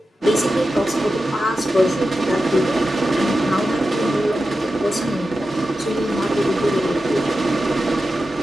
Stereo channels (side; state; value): both; normal; correlation 0.91